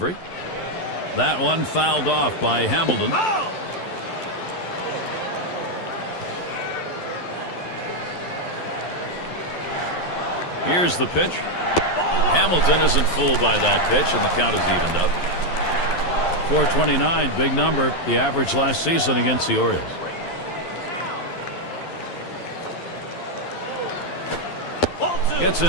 That one fouled off by Hamilton. Here's the pitch. Hamilton isn't fooled by that pitch, and the count is evened up. 429, big number, the average last season against the Orioles. Gets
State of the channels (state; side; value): late; right; 11 ms